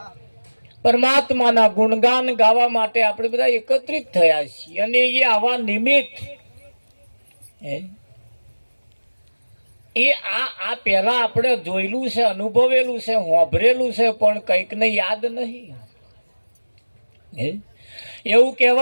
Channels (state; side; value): inverted; both; correlation -1.00